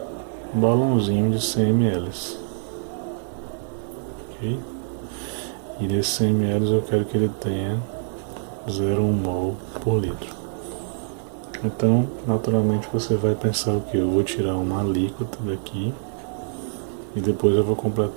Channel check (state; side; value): silent; left; digital silence